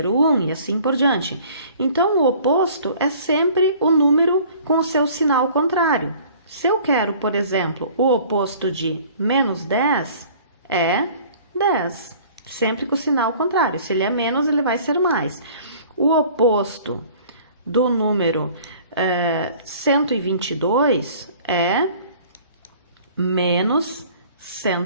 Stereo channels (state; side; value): inverted; both; correlation -0.50